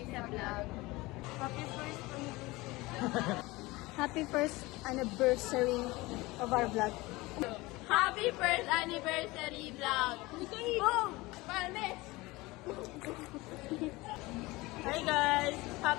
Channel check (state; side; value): quieter; right; 21.4 dB